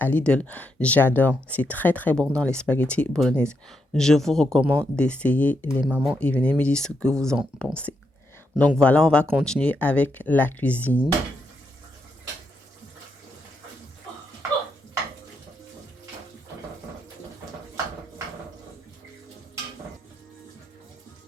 Lidl, j'adore. C'est très très bon dans les spaghettis bolognaises. Je vous recommande d'essayer les mamans et venez me dire ce que vous en pensez. Donc voilà, on va continuer avec la cuisine.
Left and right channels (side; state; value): both; normal; correlation 0.81